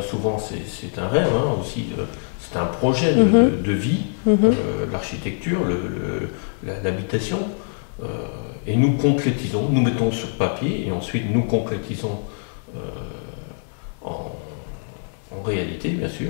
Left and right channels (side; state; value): right; silent; 60 dB below the other